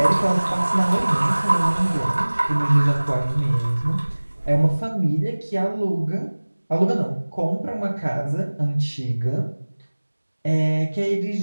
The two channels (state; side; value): inverted; both; correlation -1.00